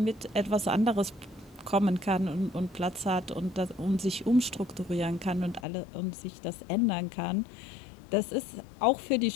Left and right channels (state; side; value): drops out; right; at 5.7 s